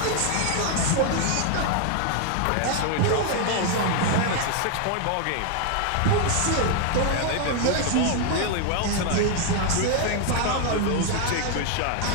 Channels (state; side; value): different; both; correlation 0.00